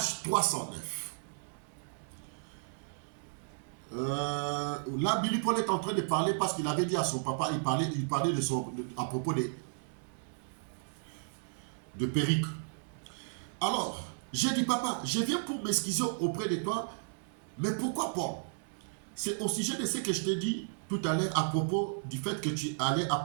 309. Là, Billy Paul est en train de parler parce qu'il avait dit à son papa, il parlait à propos de Péricle. Alors, j'ai dit, papa, je viens pour m'excuser auprès de toi, mais pourquoi Paul? C'est au sujet de ce que je t'ai dit tout à l'heure à propos du fait que tu allais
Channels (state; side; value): silent; left; digital silence